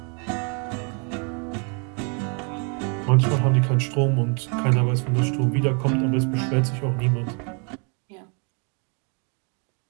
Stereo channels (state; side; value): quieter; left; 36.6 dB